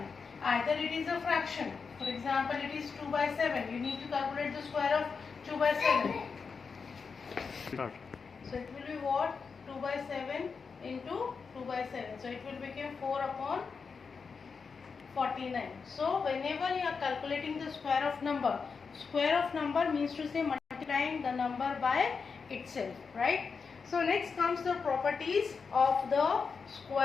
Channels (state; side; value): quieter; right; 5.3 dB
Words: Either it is a fraction. For example, it is 2 by 7. You need to calculate the square of 2 by 7. So it will be what? 2 by 7 into 2 by 7. So it will become 4 upon 49. So whenever you are calculating the square of number means to say multiplying the number by itself, right? So next comes the properties of the